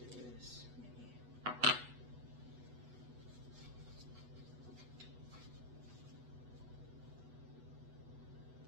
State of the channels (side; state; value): left; late; 8.1 ms